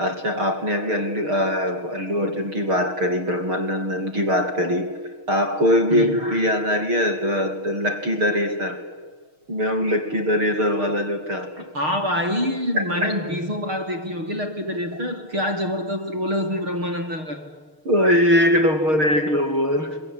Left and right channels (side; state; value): left; late; 6.5 ms